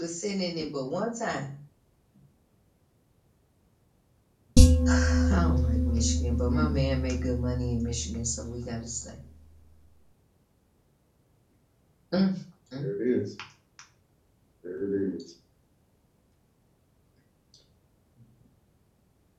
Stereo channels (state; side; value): identical; both; correlation 1.00